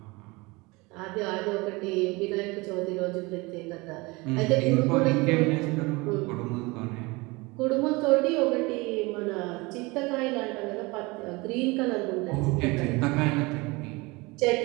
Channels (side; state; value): left; quieter; 24.5 dB